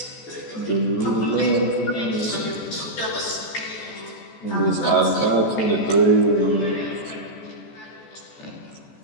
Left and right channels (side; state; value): right; late; 14 ms